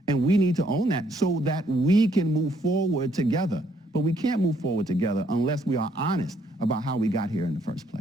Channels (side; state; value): both; normal; correlation 0.69